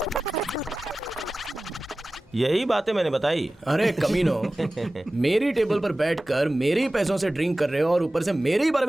यही बातें मैंने बताई। अरे कमीनो, मेरी टेबल पर बैठकर मेरे ही पैसों से ड्रिंक कर रहे हो और ऊपर से मेरे ही बारे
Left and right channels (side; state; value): both; normal; correlation 0.96